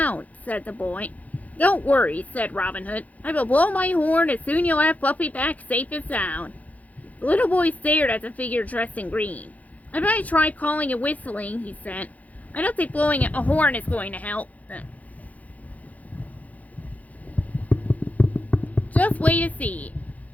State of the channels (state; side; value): late; right; 0.074 ms